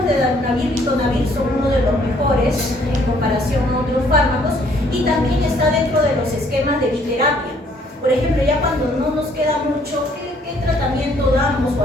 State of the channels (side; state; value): both; normal; correlation 0.63